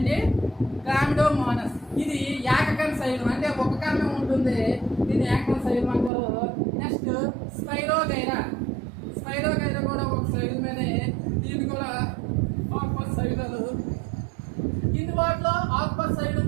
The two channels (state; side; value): drops out; left; at 6.1 s